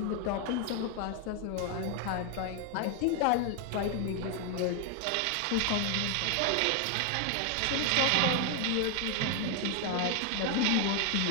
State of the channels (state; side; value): different; both; correlation 0.00